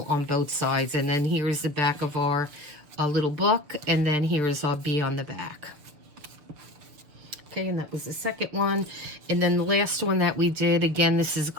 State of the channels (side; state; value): left; late; 6.7 ms